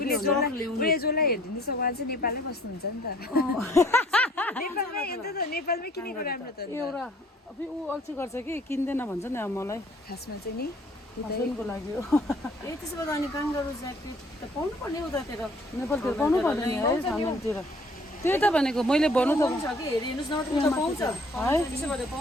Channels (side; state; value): both; normal; correlation 0.57